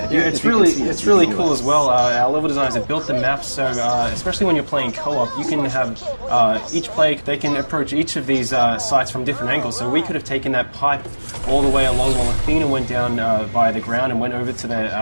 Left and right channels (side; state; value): both; inverted; correlation -1.00